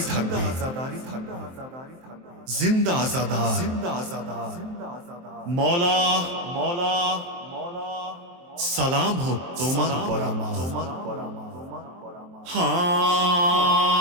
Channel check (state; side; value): late; left; 23 ms